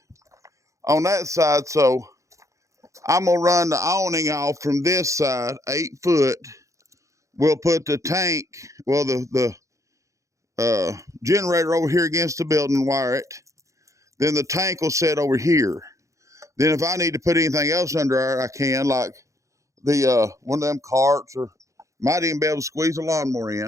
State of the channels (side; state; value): left; late; 0.15 ms